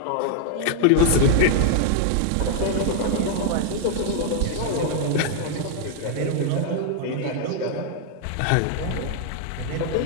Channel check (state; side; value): different; both; correlation 0.00